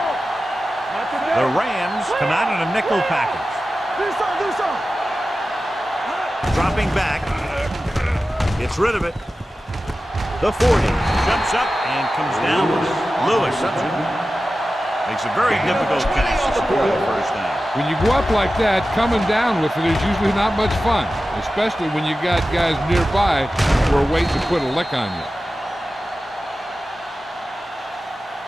Not today. The Rams come out in a nickel package. Do something. Dropping back. Gets rid of it. The 40 jumps up and comes down with it. Lewis makes a very difficult catch to score the first down. When you go up like that, coming down with it is usually not much fun, especially when you got guys nearby who are waiting to put a lick on you.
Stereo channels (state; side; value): normal; both; correlation 0.94